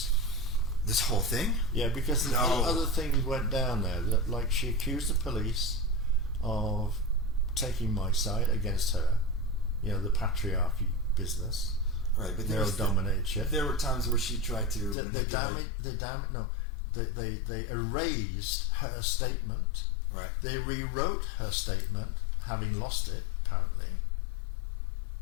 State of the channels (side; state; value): right; drops out; at 15.0 s